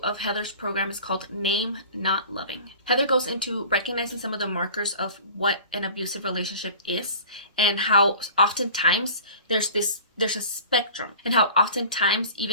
of Heather's program is called Name Not Loving. Heather goes into recognizing some of the markers of what an abusive relationship is, and how oftentimes there's a spectrum, and how oftentimes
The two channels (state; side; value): inverted; both; correlation -0.42